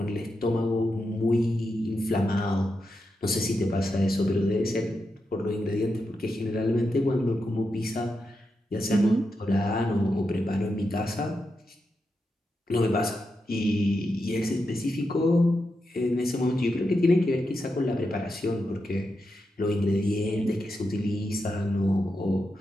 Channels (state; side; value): normal; both; correlation 0.86